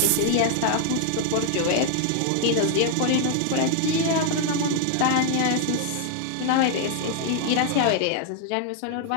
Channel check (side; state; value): both; different; correlation 0.00